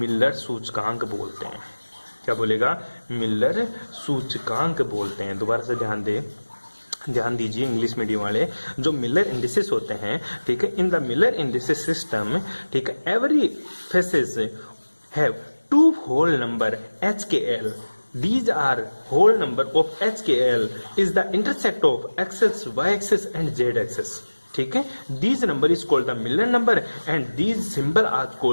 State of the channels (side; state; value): both; inverted; correlation -1.00